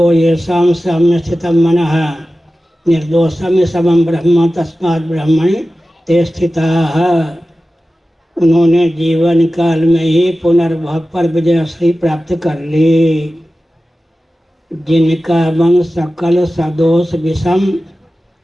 येषां साम्य स्थितं मनः निर्दोषम समम ब्रह्म तस्मात् ब्रह्मणि ते स्थिताः। उन्होंने जीवन काल में ही पुनर्भव पर विजयश्री प्राप्त कर ली। जिनका मन सकल सदोष विषम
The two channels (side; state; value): both; normal; correlation 0.95